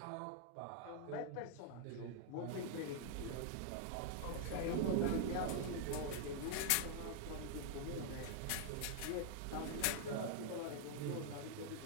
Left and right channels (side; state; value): both; different; correlation -0.01